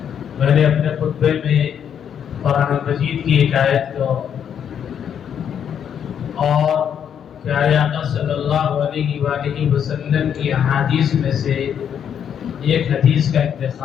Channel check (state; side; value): quieter; right; 8.5 dB